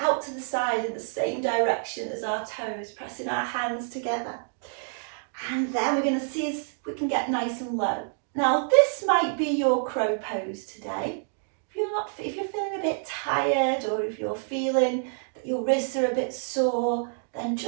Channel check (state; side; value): silent; left; digital silence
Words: to the side in the same direction as our toes, pressing our hands together. And then we're going to see if we can get nice and low. Now, this might be your crow pose today. If you're feeling a bit tired, or if you're feeling that your wrists are a bit sore, then